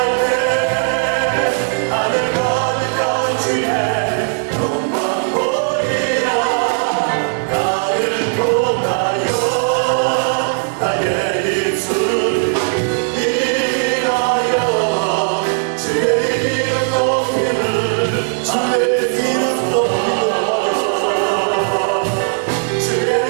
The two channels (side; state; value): left; silent; digital silence